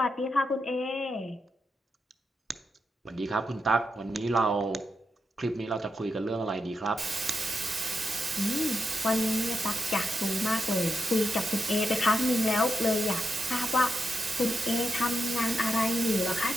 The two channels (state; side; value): normal; both; correlation 0.85